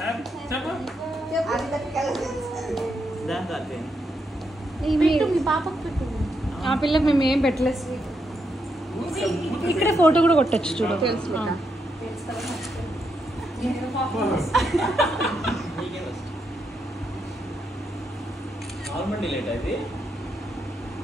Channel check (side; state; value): both; normal; correlation 0.81